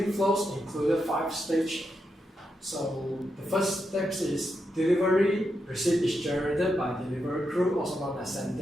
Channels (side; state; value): both; normal; correlation 0.85